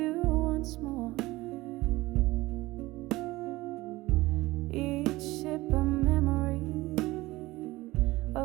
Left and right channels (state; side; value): quieter; left; 19.3 dB